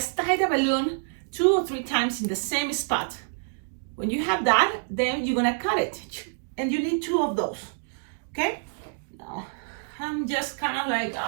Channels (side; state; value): left; silent; digital silence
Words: tie the balloon 2 or 3 times in the same spot. When you have that, then you're gonna cut it. And you need 2 of those, okay? Now, I'm just kind of like,